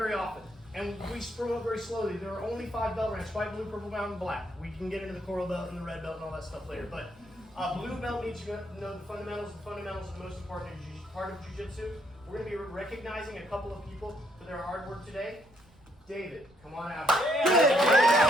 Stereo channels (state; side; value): noise; right; rumble, 28 dB below the sound